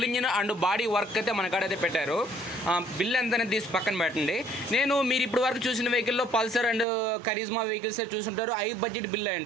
engine and body work అయితే మన కాడైతే పెట్టారు. బిల్ ఎంత అనేది తీసి పక్కన పెట్టండి. మీరు ఇప్పుడు వరకు చూసిన వెహికల్లో పల్సర్ అండ్ కరిజ్మా వెహికల్స్ చూసుంటారు, హై బడ్జెట్ బిల్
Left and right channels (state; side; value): drops out; left; at 6.9 s